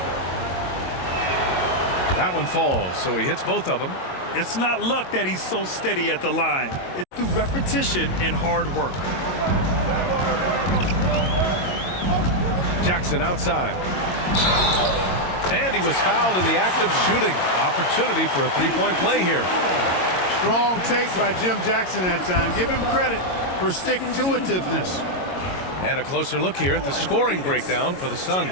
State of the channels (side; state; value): right; late; 22 ms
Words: That one falls, so he hits both of them. It's not luck that he's so steady at the line. It's through repetition and hard work. Jackson outside. And he was fouled in the act of shooting. Opportunity for a 3-point play here. Strong take by Jim Jackson that time. Give him credit for stick-to-itiveness. And a closer look here at the scoring breakdown for the